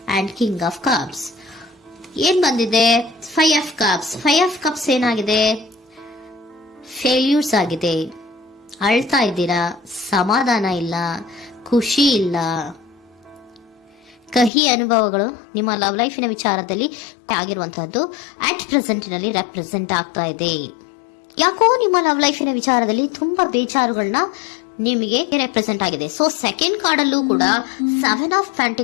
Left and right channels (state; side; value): drops out; right; at 14.5 s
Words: and king of cups. ಏನ್ ಬಂದಿದೆ? 5 ಆಫ್ ಕಪ್ಸ್. 5 ಆಫ್ ಕಪ್ಸ್ ಏನಾಗಿದೆ? ಫೇಲ್ಯೂರ್ಸ್ ಆಗಿದೆ, ಅಳ್ತಾ ಇದ್ದೀರಾ, ಸಮಾಧಾನ ಇಲ್ಲ, ಖುಷಿ ಇಲ್ಲ, ಕಹಿ ಅನುಭವಗಳು ನಿಮ್ಮ ಲವ್ ಲೈಫಿನ ವಿಚಾರದಲ್ಲಿ ಆಗಿರುವಂತಹದ್ದು ಅಟ್ ಪ್ರೆಸೆಂಟಿನಲ್ಲಿ ರೆಪ್ರೆಸೆಂಟ್ ಆಗ್ತಾ ಇದೆ. ಯಾಕೋ ನಿಮ್ಮ ಲವ್ ಲೈಫಿನ ವಿಚಾರದಲ್ಲಿ ತುಂಬಾ ಬೇಜಾರುಗಳನ್ನ ನಿಮಗೆ ರೆಪ್ರೆಸೆಂಟ್ ಆಗಿದೆ. ಸೊ ಸೆಕೆಂಡ್ ಕಾರ್ಡ್ ಅಲ್ಲೂ ಕೂಡ 7 ಆಫ್